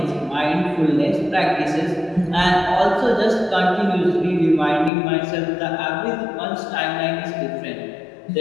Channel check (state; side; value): drops out; right; at 4.9 s